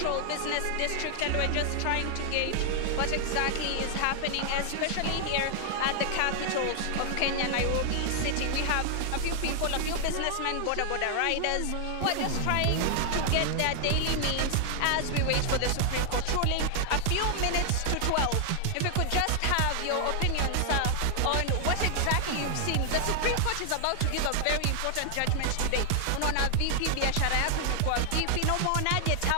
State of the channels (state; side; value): different; both; correlation 0.00